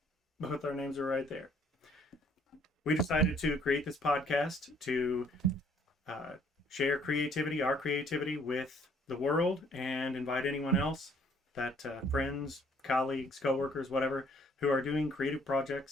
both our names are right there. We decided to create this podcast to share our creativity with the world, and invite anyone else that friends, colleagues, coworkers, whatever, who are doing creative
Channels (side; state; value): both; normal; correlation 0.62